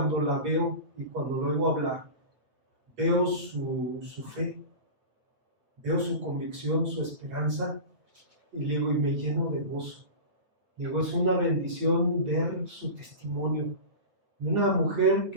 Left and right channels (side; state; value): left; late; 8.4 ms